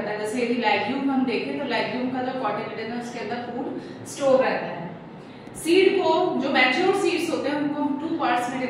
है। जैसे यदि लेग्यूम हम देखें तो लेग्यूम का जो कॉटिलिडन है उसके अंदर फूड स्टोर रहता है। सीड को जो मैच्योर सीड्स होते हैं उनको हम टू पार्ट्स में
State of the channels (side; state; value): both; identical; correlation 1.00